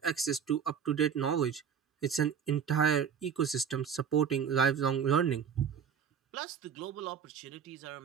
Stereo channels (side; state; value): left; quieter; 7.5 dB